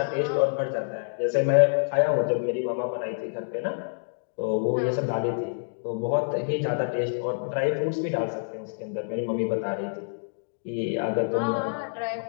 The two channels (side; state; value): right; silent; digital silence